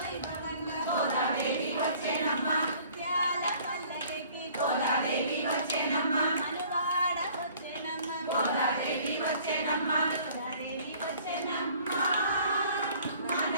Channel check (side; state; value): both; inverted; correlation -0.53